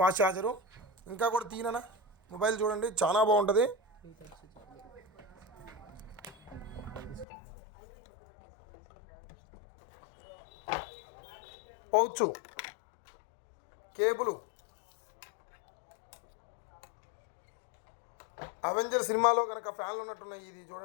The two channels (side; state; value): right; drops out; at 7.2 s